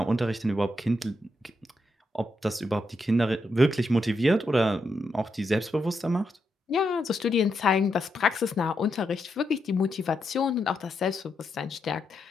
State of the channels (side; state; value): both; normal; correlation 0.82